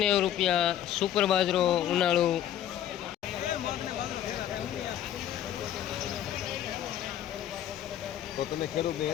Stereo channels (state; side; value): quieter; right; 11.1 dB